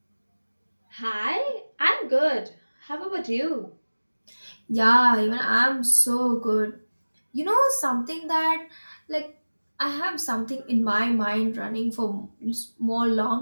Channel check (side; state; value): both; inverted; correlation -1.00